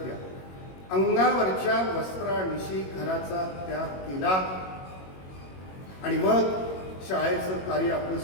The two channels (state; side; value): late; right; 21 ms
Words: घ्या, अंगावरच्या वस्त्रानिशी घराचा त्याग केला आणि मग शाळेचं कार्य आपलं